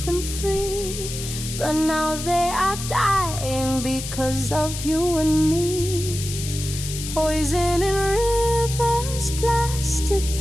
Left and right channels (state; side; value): noise; left; hiss, 8 dB below the sound